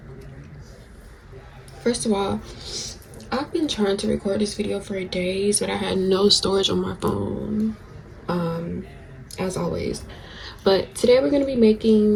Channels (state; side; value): identical; both; correlation 1.00